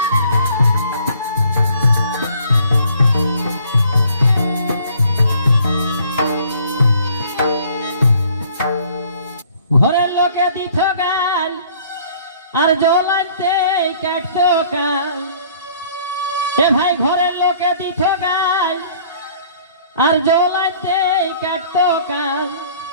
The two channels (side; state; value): both; inverted; correlation -0.56